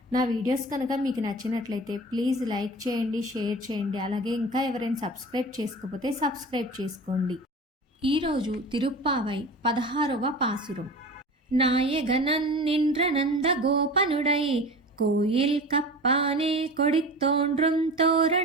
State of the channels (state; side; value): normal; both; correlation 0.35